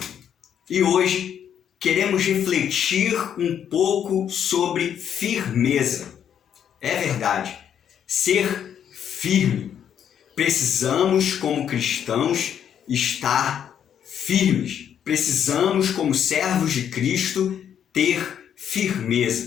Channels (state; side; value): quieter; right; 8.9 dB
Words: E hoje queremos refletir um pouco sobre firmeza. É verdade, ser firme. Precisamos, como cristãos, estar firmes. Precisamos, como servos de Cristo, ter